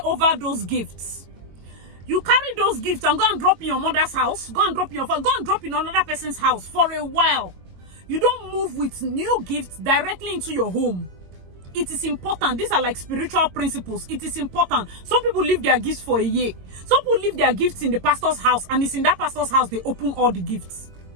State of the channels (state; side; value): late; left; 22 ms